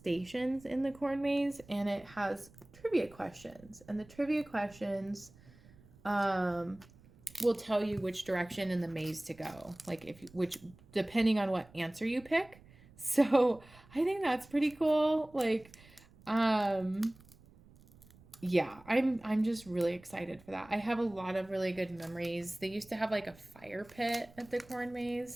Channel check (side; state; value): right; noise; rumble, 24 dB below the sound